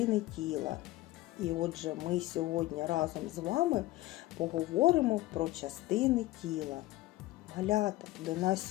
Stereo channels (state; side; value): quieter; right; 17.2 dB